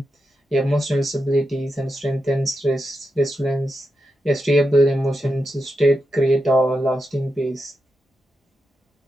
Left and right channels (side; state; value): both; normal; correlation 0.88